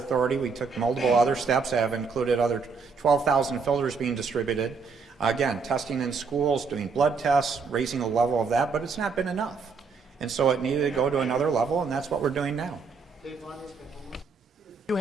We took multiple other steps, have included other 12,000 filters being distributed. Again, testing in schools, doing blood tests, raising the level of that, but it's not been enough. And so it needed to go to another level, and that's what we're doing now. If you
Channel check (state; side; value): quieter; left; 5.0 dB